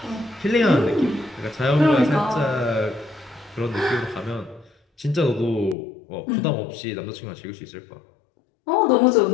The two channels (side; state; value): right; drops out; at 5.8 s